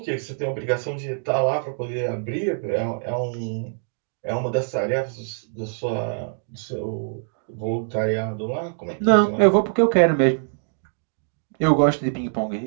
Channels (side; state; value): left; silent; digital silence